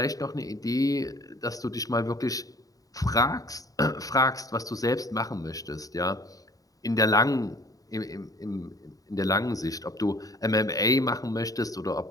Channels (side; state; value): right; late; 0.17 ms